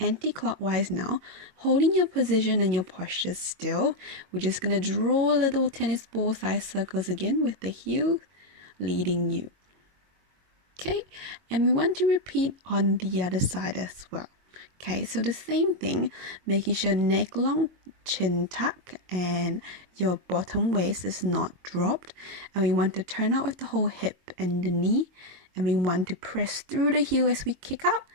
now, holding your position and your posture still. We're just going to draw little tennis ball size circles again with the heel leading you. Okay, and we want to repeat on the other side as well. Okay, so the same thing, making sure neck long, chin tuck, and your bottom waist is not dropped. And we want to turn out with the whole hip and the knee. And we want to press through the heel as we kick up,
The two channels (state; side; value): late; left; 22 ms